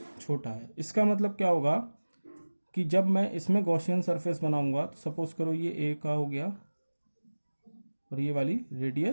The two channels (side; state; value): both; inverted; correlation -1.00